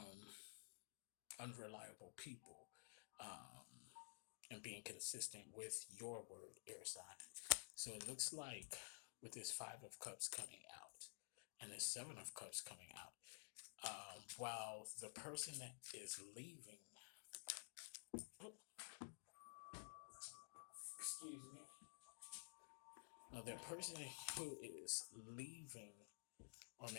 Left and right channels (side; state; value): right; silent; digital silence